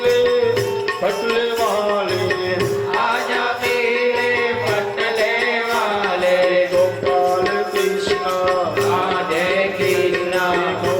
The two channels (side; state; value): both; identical; correlation 1.00